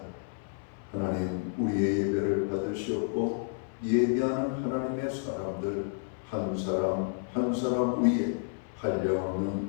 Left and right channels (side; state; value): right; silent; 57 dB below the other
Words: 하나님, 우리의 예배를 받으시옵고 예배하는 하나님의 사람들 한 사람 한 사람 위에